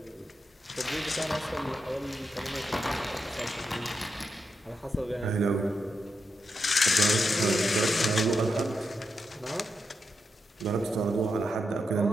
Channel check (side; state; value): both; normal; correlation 0.85